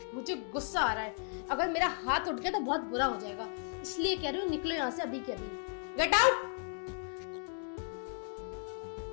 मुझे गुस्सा आ रहा है, अगर मेरा हाथ उठ गया तो बहुत बुरा हो जाएगा, इसलिए कह रही हूँ निकलो यहाँ से अभी के अभी। Get out.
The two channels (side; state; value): right; silent; 54 dB below the other